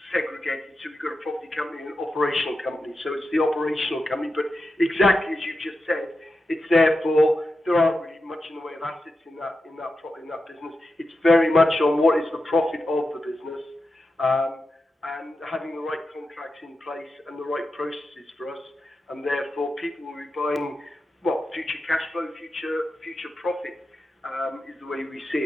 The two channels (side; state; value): both; normal; correlation 0.90